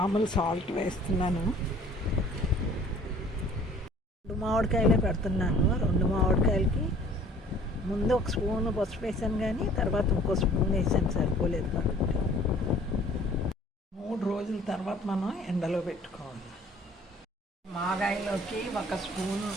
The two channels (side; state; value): both; normal; correlation 0.53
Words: సాల్ట్ వేస్తున్నాను. 2 మామిడికాయలే పెడుతున్నాను. 2 మామిడికాయలకి ముందు ఒక స్పూన్ పసుపు వేసాను, కానీ తర్వాత ఇంకో స్పూన్ వేసాను, సరిపోలేదు కాబట్టి 3 రోజుల తర్వాత మనం ఎండలో పెట్టుకోవాలి. మాగాయలోకి 1 స్పూను